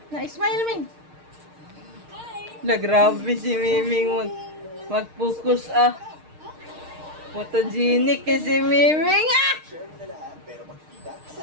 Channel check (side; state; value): left; late; 6.5 ms